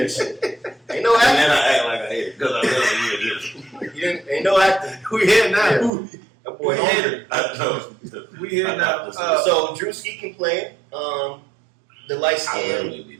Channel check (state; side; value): drops out; left; at 5.9 s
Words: shit. Ain't no And acting. then I act like I hate it because I really hear this. Ain't no acting. we here now? That boy We hungry. I know. We here now. So Drewski can play. The light I skin. really be